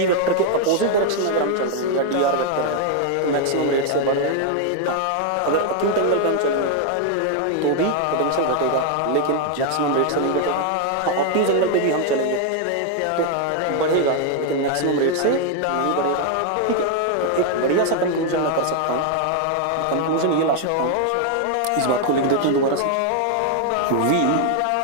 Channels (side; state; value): both; different; correlation 0.00